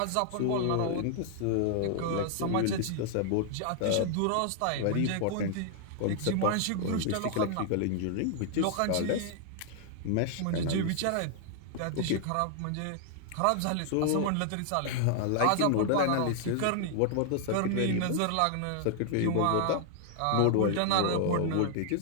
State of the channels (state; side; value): different; both; correlation 0.00